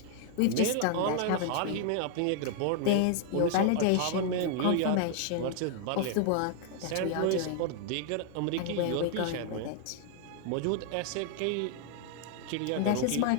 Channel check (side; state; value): both; different; correlation 0.00